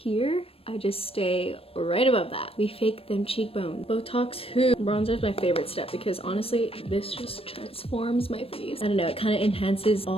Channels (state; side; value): late; right; 0.28 ms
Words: I just stay right above that. We fake them cheekbones. Botox who? Bronzer is my favorite step because honestly, this just transforms my face. I don't know, it kind of enhances